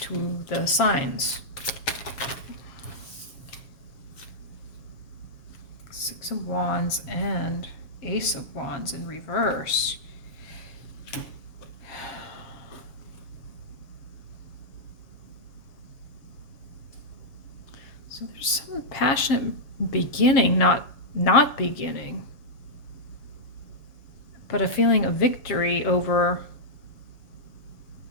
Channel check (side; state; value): right; late; 7.4 ms